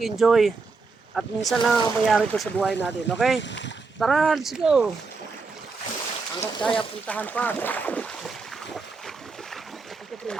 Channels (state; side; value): quieter; left; 4.3 dB